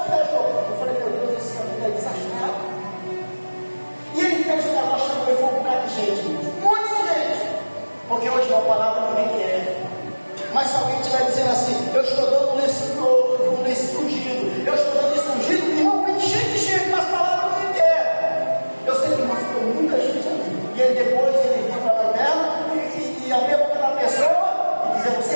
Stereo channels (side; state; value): both; inverted; correlation -1.00